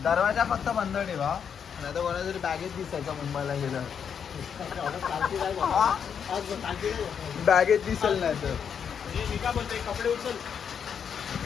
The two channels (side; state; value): right; quieter; 7.4 dB